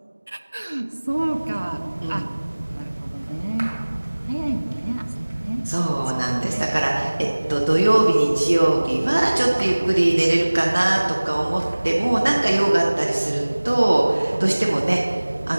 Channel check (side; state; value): both; inverted; correlation -1.00